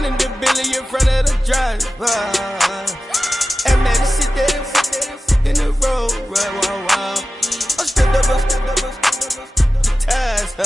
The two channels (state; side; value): normal; both; correlation 0.95